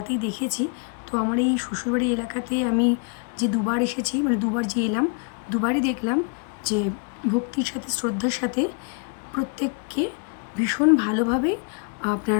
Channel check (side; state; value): right; quieter; 37.9 dB